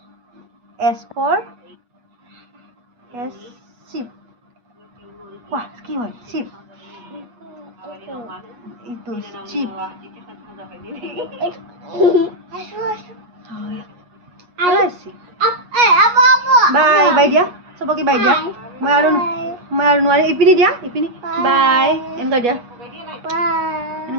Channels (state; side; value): late; left; 8.3 ms